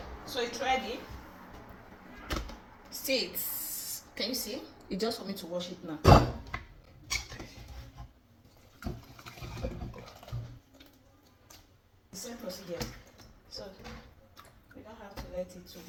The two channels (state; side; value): identical; both; correlation 1.00